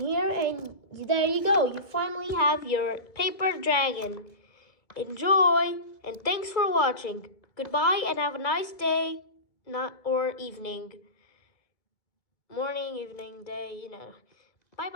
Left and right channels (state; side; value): late; right; 2.2 ms